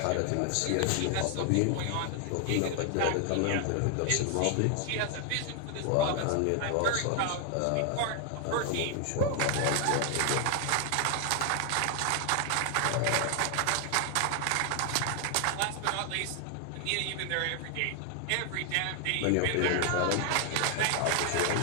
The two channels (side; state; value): both; different; correlation 0.00